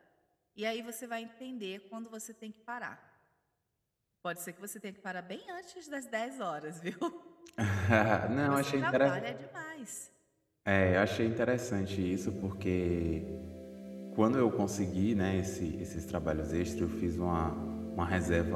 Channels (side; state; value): both; identical; correlation 1.00